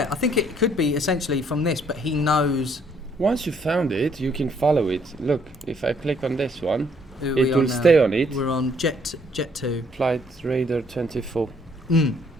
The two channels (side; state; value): both; normal; correlation 0.66